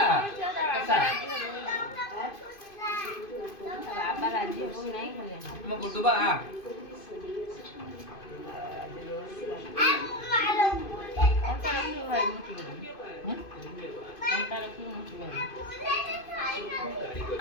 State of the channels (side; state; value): right; late; 2.5 ms